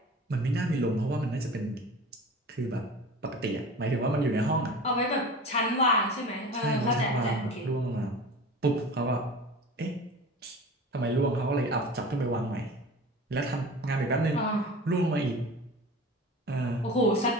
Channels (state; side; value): normal; both; correlation 0.36